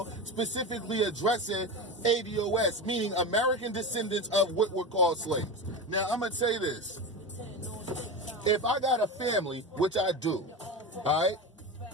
specifically addressing ADOS, meaning American descendants of what were called slaves? Now, I'm going to say this. If I got a family, which I do, all right,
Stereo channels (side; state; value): both; normal; correlation 0.23